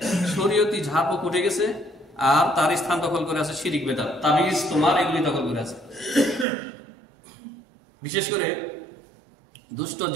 শরীয়তি ঝাড়ফুঁক উঠে গেছে, আর তার স্থান দখল করে আছে শিরিক বেদাত, তাবিজ তোমার এগুলি দখল করে আছে। বিশেষ করে দুষ্ট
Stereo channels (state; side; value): drops out; left; at 6.5 s